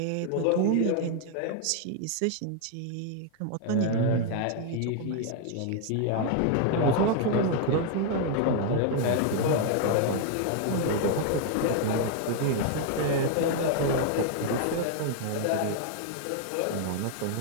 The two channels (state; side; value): different; both; correlation 0.00